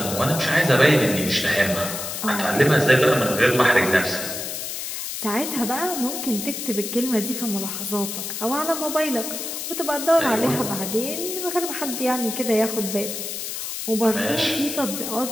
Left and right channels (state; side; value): noise; left; hiss, 6 dB below the sound